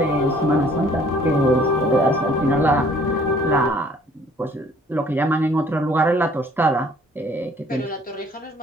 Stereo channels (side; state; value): both; normal; correlation 0.57